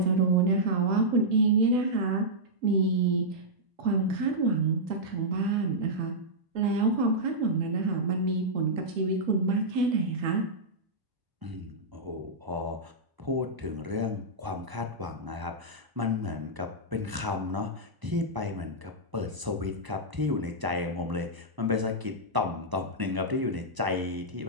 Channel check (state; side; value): late; left; 1.0 ms